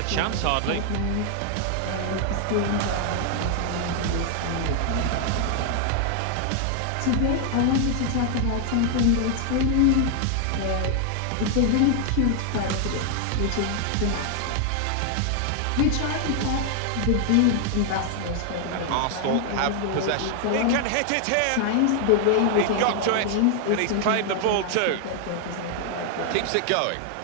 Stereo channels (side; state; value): both; different; correlation 0.00